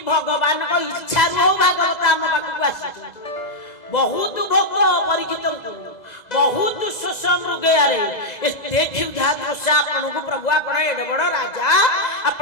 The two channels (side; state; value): right; late; 2.0 ms